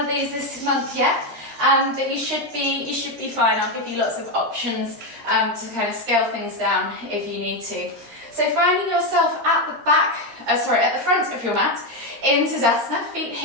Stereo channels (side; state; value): left; late; 13 ms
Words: of these this month yet, but you should be fine. I'll give you lots of options to kind of scale things down if you need to. So finding yourself at the back, at the front of your mat in Tadasana, feet